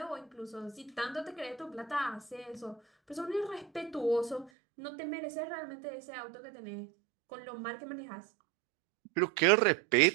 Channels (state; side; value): drops out; left; at 4.5 s